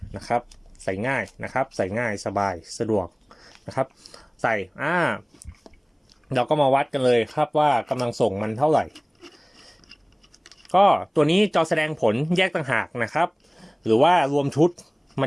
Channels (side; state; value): both; identical; correlation 1.00